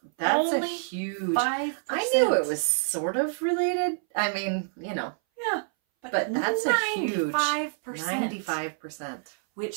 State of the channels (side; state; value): left; silent; 60 dB below the other